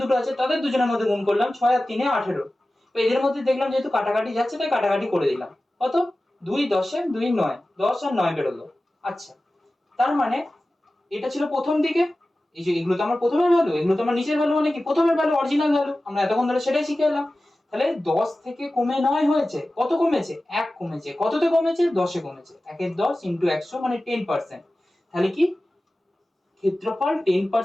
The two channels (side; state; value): both; normal; correlation 0.96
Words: দুটো আছে তাদের দুজনের মধ্যে গুণ করলাম, 6 আর 3 এ 18। তো এদের মধ্যে দেখলাম যেহেতু কাটাকাটি যাচ্ছে তাই কাটাকাটি করে দিলাম। কত? 2 10 এ 2 9, 10 আর 9 বেরোলো। আচ্ছা, তার মানে এটা ছিল প্রথম দিকে। এই যে এগুলো তো আমার প্রথমের ভ্যালু, এগুলো তো আমার নিচের ভ্যালু, মানে কি প্রথমের ভ্যালু অরিজিনাল ভ্যালু, আমরা এতক্ষণ ধরে সেটাই শিখে এলাম। তাহলে 10 থেকে কমে 9 হয়েছে, কত কমেছে? 1 কমেছে। কততে কমেছে? 10 এ কমেছে। 1 এর 10 ইনটু 100 মানে 10%। তাহলে কি ক্ষেত্রফল